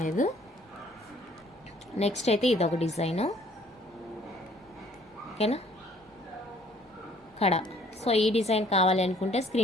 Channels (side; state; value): both; normal; correlation 0.59